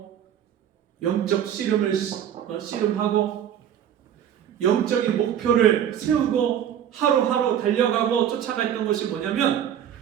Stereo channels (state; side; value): quieter; left; 9.7 dB